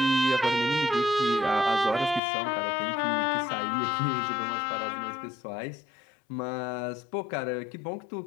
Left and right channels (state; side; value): drops out; right; at 2.2 s